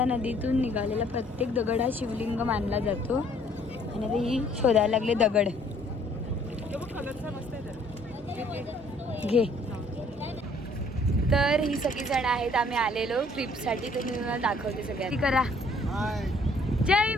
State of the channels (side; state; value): both; normal; correlation 0.60